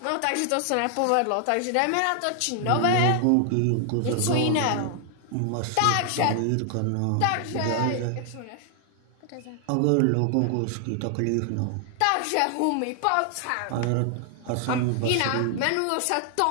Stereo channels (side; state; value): both; different; correlation 0.00